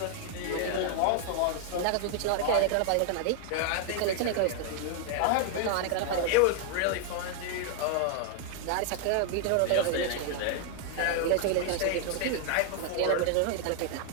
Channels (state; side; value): different; both; correlation 0.00